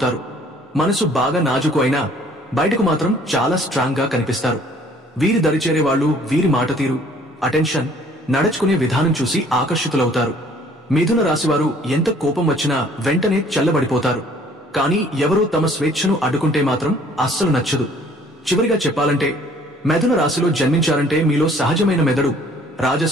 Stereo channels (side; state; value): both; normal; correlation 0.57